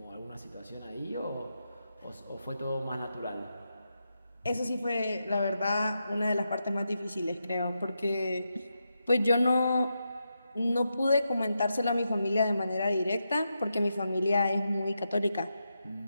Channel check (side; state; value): both; inverted; correlation -0.86